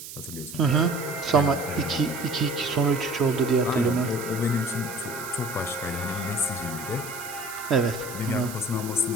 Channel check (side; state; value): right; noise; hiss, 12 dB below the sound